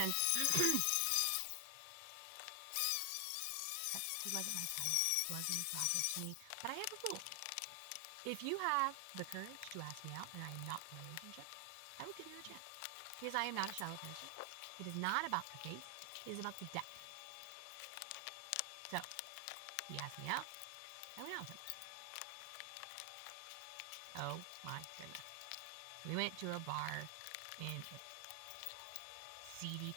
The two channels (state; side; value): different; both; correlation 0.00